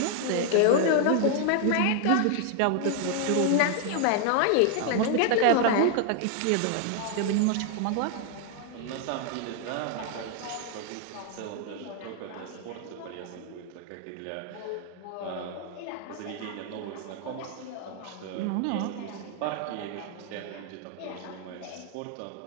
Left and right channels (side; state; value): both; different; correlation 0.00